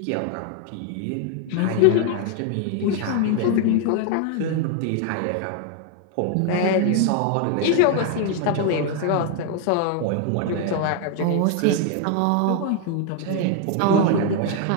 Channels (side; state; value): both; different; correlation 0.00